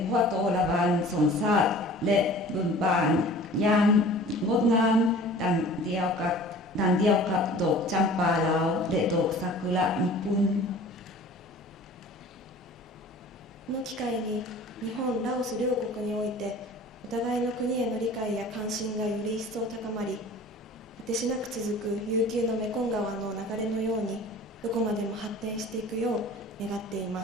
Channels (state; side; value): normal; both; correlation 0.44